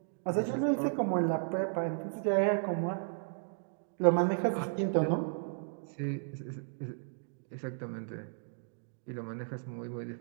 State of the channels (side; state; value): left; silent; digital silence